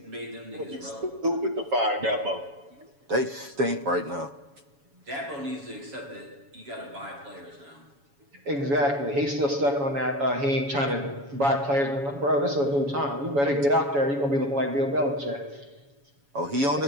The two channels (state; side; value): late; left; 7.2 ms